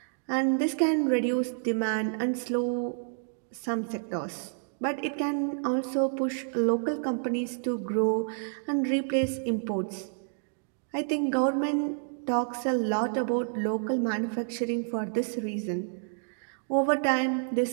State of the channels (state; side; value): silent; left; digital silence